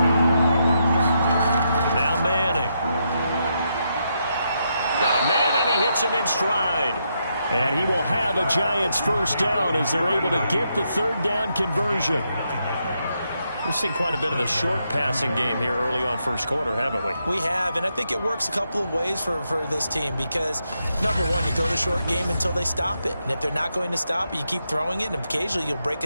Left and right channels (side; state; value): both; inverted; correlation -0.81